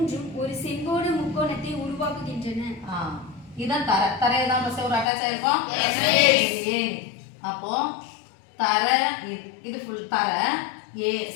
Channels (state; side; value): drops out; right; at 5.1 s